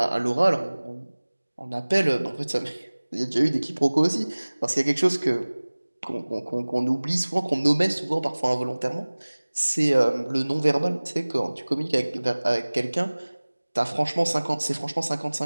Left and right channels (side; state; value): both; inverted; correlation -1.00